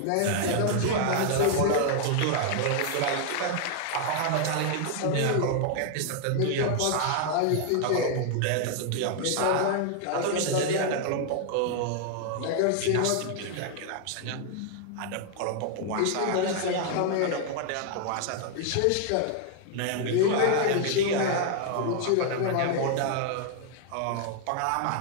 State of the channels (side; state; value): both; different; correlation 0.00